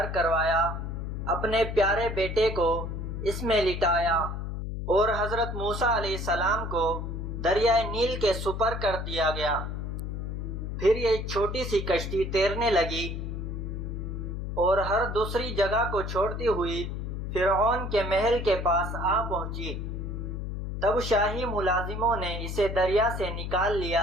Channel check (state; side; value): noise; left; hum, 5 dB below the sound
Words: کروایا، اپنے پیارے بیٹے کو اس میں لٹایا اور حضرت موسیٰ علیہ السلام کو دریائے نیل کے سپر کر دیا گیا۔ پھر یہ چھوٹی سی کشتی تیرنے لگی اور ہر دوسری جگہ کو چھوڑتی ہوئی فرعون کے محل کے پاس آ پہنچی۔ تب شاہی ملازموں نے اسے دریا سے نکال